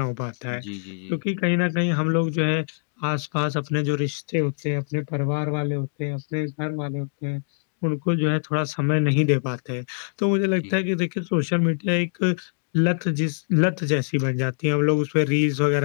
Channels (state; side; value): silent; right; digital silence